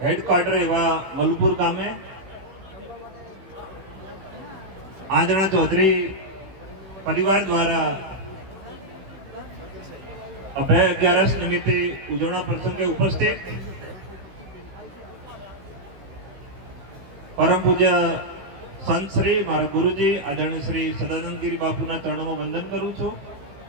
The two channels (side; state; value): left; late; 16 ms